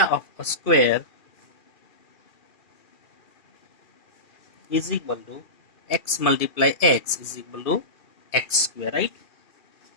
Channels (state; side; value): late; right; 2.5 ms